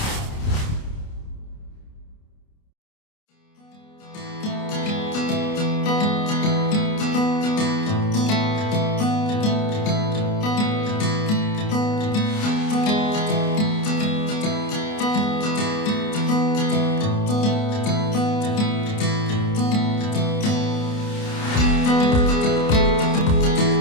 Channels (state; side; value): late; right; 29 ms